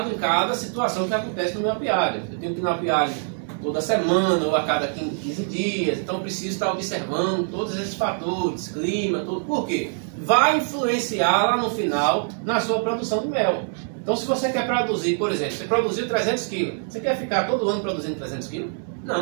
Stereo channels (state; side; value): silent; left; 63 dB below the other